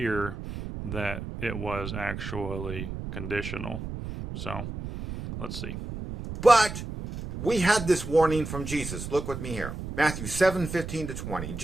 that it was actually conditional. So let's see. But we had this warning from Jesus. Look with me here. Matthew 7:15-20.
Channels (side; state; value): right; noise; rumble, 7 dB below the sound